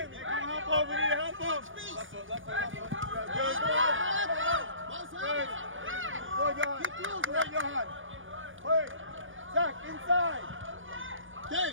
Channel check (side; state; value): left; late; 0.57 ms